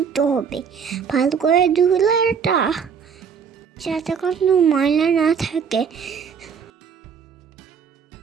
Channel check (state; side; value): quieter; left; 6.7 dB